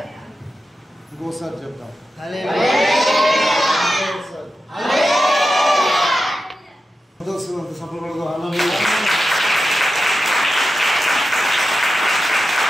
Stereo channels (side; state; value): both; normal; correlation 0.91